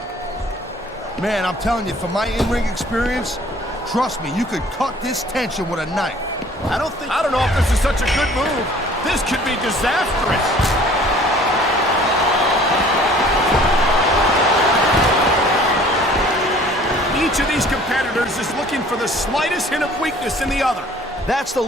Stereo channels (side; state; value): both; normal; correlation 0.52